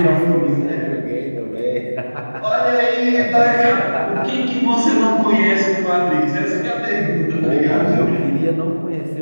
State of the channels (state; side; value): inverted; both; correlation -1.00